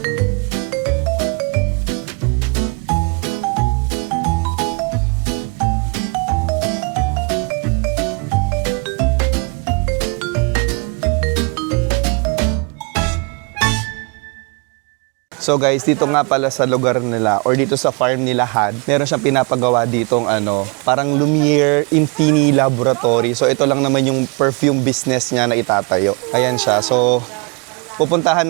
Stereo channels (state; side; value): quieter; left; 33.0 dB